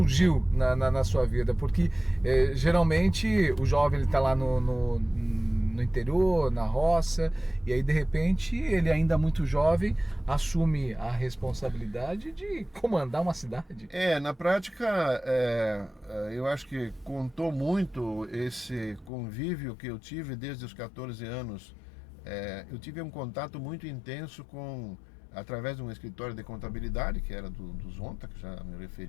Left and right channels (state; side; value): drops out; right; at 19.1 s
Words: na sua vida? Porque geralmente o jovem está lá no interior, na roça, e aí de repente ele, ainda muito jovem, assume a responsabilidade de comandar uma cidade. Na prática, eu acho que contou muito esse convívio que eu tive desde os 14 anos. Eu tive um contato muito intenso através de um escritório de contabilidade, que era do Zonta, que já me